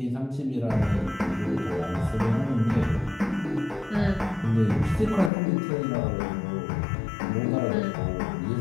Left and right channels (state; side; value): drops out; right; at 5.3 s